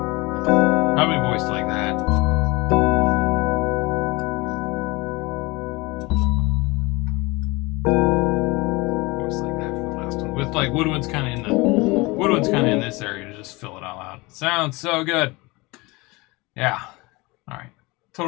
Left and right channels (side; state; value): right; quieter; 23.9 dB